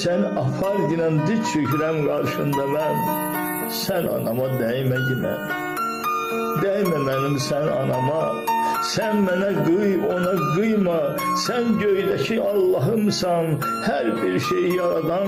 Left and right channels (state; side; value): identical; both; correlation 1.00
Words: apar ginen, diz çökürem karşında ben. Sen anama değme yine, değme benim sen anama. Sen bana kıy, ona kıyma. Sen göydeki Allah'ımsan, her bir şeyi